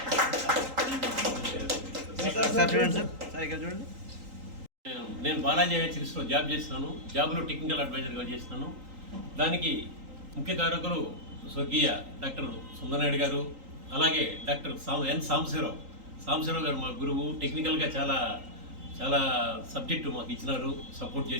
సార్ చూడండి సార్. సార్ ఇక్కడ చూడండి. నేను బాలాజీ హెచ్ఎస్లో జాబ్ చేస్తున్నాను. జాబ్లో టెక్నికల్ అడ్వైజర్గా చేస్తున్నాను. దానికి ముఖ్య కారకులు స్వర్గీయ డాక్టర్ సుందరనాయుడు గారు, అలాగే డాక్టర్ ఎన్ సాంబశివరావు గారు మా గురువు. టెక్నికల్గా చాలా చాలా సబ్జెక్టు మాకు ఇచ్చినారు, సపోర్ట్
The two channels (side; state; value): left; late; 3.8 ms